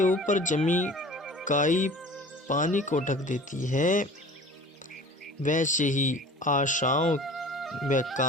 ऊपर जमी काई पानी को ढक देती है, वैसे ही आशाओं व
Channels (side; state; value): both; normal; correlation 0.43